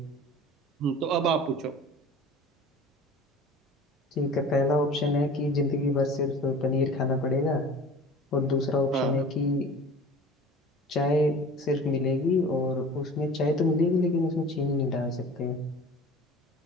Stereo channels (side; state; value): both; normal; correlation 0.40